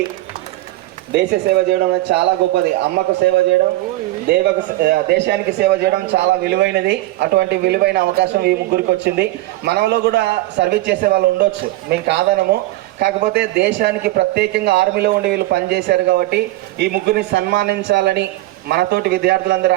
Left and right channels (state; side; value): quieter; left; 17.8 dB